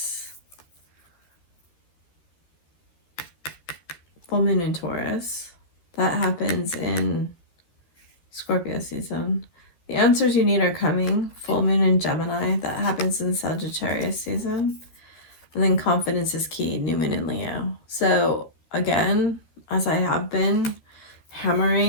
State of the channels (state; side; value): late; right; 13 ms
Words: Full moon in Taurus. That happens in Scorpio season. The answers you need are coming. Full moon in Gemini. That happens in Sagittarius season. And then confidence is key. New moon in Leo. So again, as I have been